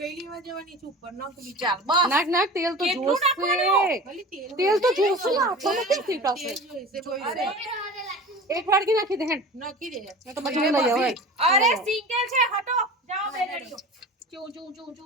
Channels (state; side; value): normal; both; correlation 0.36